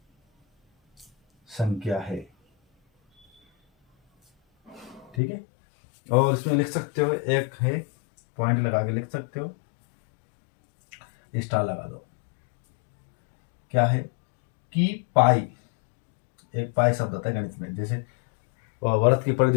संख्या है। ठीक है, और इसमें लिख सकते हो, एक है पॉइंट लगा के लिख सकते हो, स्टार लगा दो। क्या है कि पाई, एक पाई शब्द होता है गणित में, जैसे वर्त की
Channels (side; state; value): right; drops out; at 5.2 s